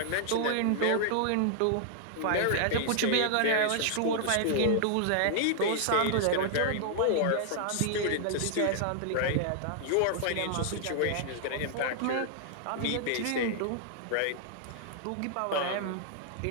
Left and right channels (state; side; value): different; both; correlation 0.00